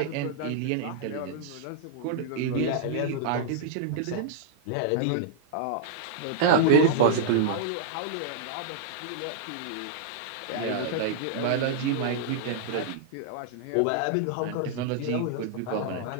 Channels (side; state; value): both; different; correlation -0.02